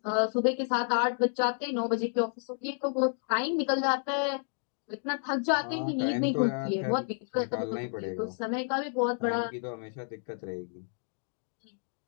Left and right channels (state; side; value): silent; right; 57 dB below the other